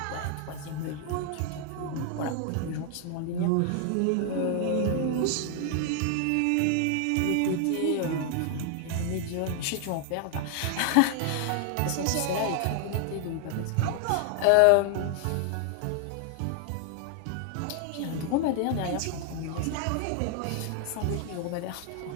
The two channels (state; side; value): different; both; correlation 0.00